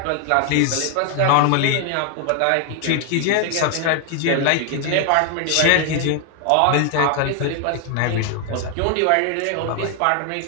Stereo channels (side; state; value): both; different; correlation 0.00